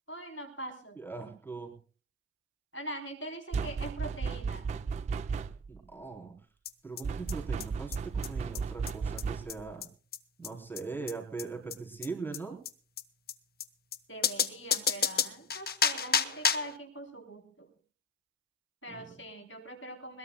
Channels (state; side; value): normal; both; correlation 0.25